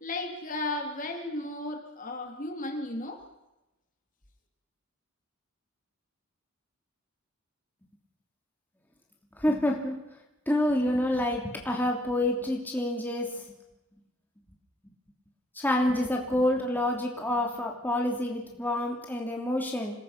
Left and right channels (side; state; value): both; normal; correlation 0.64